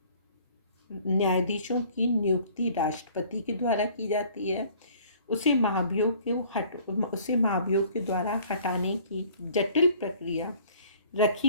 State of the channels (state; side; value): inverted; both; correlation -0.54